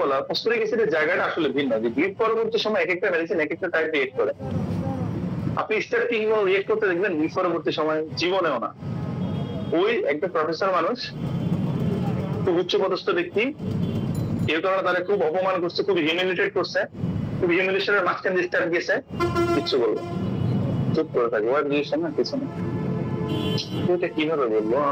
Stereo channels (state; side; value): identical; both; correlation 1.00